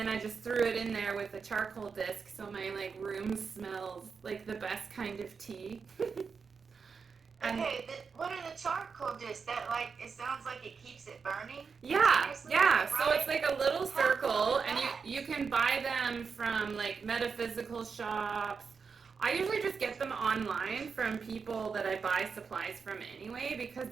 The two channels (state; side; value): quieter; left; 5.5 dB